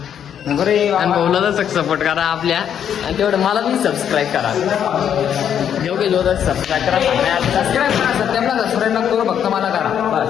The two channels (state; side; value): quieter; right; 9.0 dB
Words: आणि भाऊला तर सपोर्ट करा आपल्या, आणि तेवढं मला पण सबस्क्राईब करा. योग्य जोर सबस्क्राईब करा, सबस्क्राईब करा. सत्याला सबस्क्राईब नको करू, फक्त मला करा